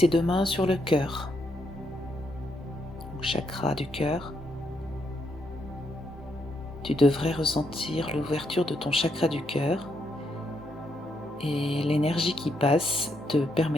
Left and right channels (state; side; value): normal; both; correlation 0.78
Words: deux mains sur le cœur, au chakra du cœur. Tu devrais ressentir l'ouverture de ton chakra du cœur et l'énergie qui passe te